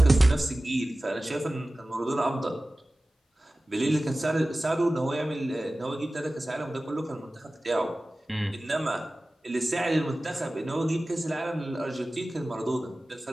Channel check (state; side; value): normal; both; correlation 0.97